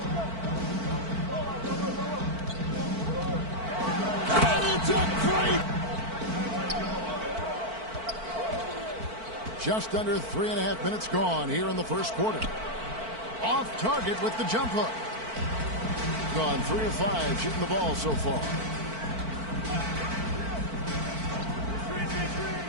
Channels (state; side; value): late; left; 4.5 ms